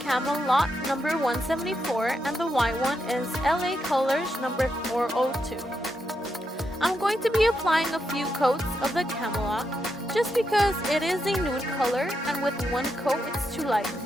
number 174 and the white one is LA Colors number 402. I'm going to be applying a few coats of the Camelot just because it is a nude color and with one coat it's too light,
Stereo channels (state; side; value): normal; both; correlation 0.83